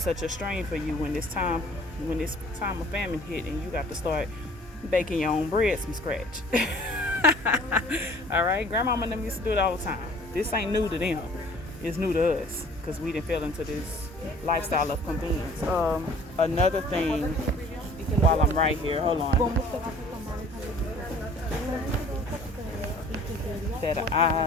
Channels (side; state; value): both; normal; correlation 0.52